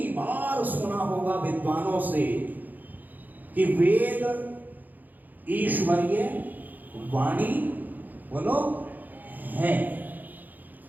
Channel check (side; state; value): left; late; 0.084 ms